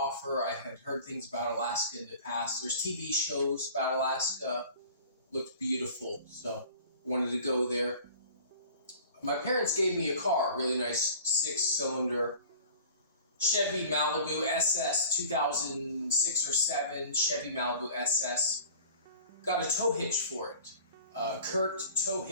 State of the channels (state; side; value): inverted; both; correlation -0.44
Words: I had heard things about Alaska in the past. There's TV shows about Alaska, looked beautiful, so I wanted to go there. My parents gave me a car, a really nice 6-cylinder Chevy Malibu SS, 2006 or 7 Chevy Malibu SS. Got a tow hitch for it. Kurt tow